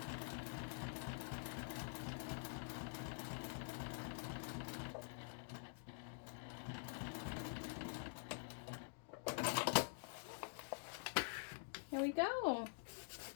Here we go.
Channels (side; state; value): right; silent; digital silence